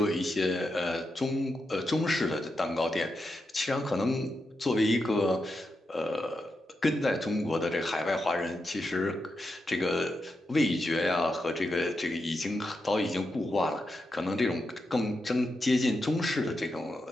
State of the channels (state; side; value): normal; both; correlation 0.86